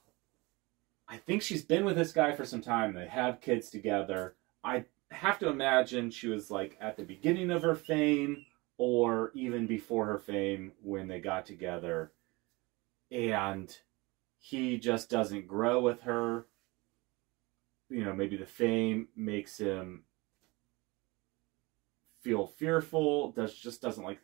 I think she's been with this guy for some time. They have kids together. I have to imagine she was like at the beginning of her fame or even before her fame when they got together. And he just doesn't grow with her. You know, maybe the fame makes him feel fearful, just doesn't like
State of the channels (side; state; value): left; quieter; 24.2 dB